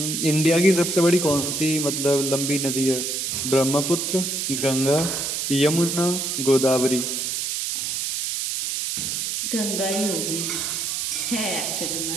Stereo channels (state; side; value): noise; right; hiss, 2 dB below the sound